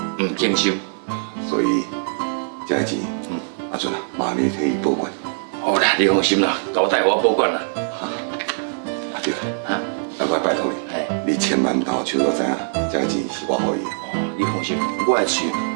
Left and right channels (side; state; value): left; silent; digital silence